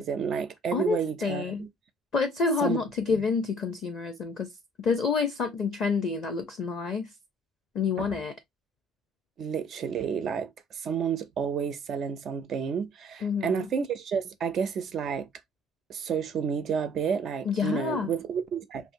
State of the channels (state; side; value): normal; both; correlation 0.55